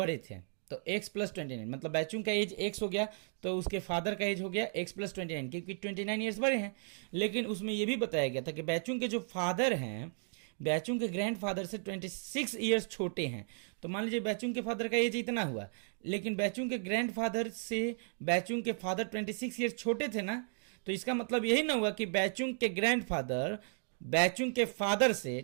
थे, तो x प्लस 29, मतलब बैचुंग का एज x हो गया तो उसके फादर का एज हो गया x प्लस 29, क्योंकि 29 years बड़े हैं। लेकिन उसमें यह भी बताया गया था कि बैचुंग के जो फादर हैं बैचुंग के ग्रैंडफादर से 26 years छोटे हैं। तो मान लीजिए बैचुंग के फादर का एज इतना हुआ, लेकिन बैचुंग के ग्रैंडफादर से बैचुंग के फादर 26 years छोटे थे ना, तो इसका मतलब यही ना हुआ कि बैचुंग के ग्रैंडफादर बैचुंग के फादर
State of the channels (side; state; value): left; silent; 55 dB below the other